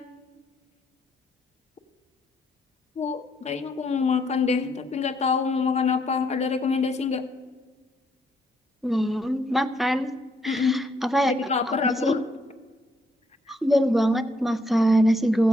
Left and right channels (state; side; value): normal; both; correlation 0.73